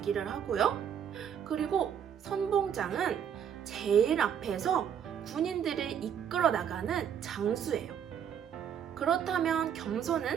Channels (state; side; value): quieter; left; 8.6 dB